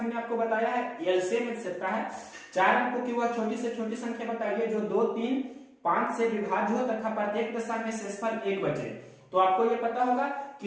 आपको बताया है एलसीएम का है। 4 अंकों की वह छोटी से छोटी संख्या बताइए जो 2 3 5 से विभाज्य हो तथा प्रत्येक दशा में शेषफल 1 बचे। तो आपको ये पता होगा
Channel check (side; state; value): both; identical; correlation 1.00